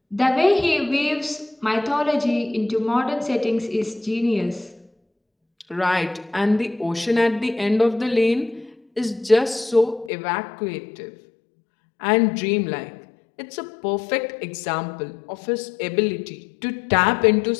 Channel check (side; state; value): right; drops out; at 10.1 s